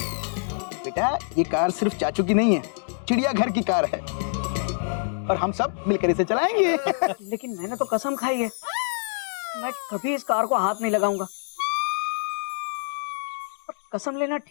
बेटा ये कार सिर्फ चाचू की नहीं है, चिड़ियाघर की कार है और हम सब मिलकर इसे चलाएंगे। लेकिन मैंने तो कसम खाई है, मैं कभी इस कार को हाथ नहीं लगाऊंगा। पर कसम लेना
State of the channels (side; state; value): right; silent; digital silence